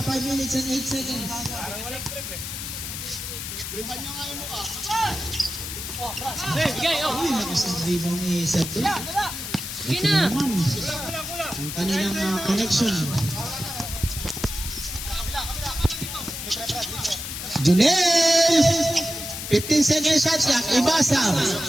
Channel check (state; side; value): noise; left; hiss, 7 dB below the sound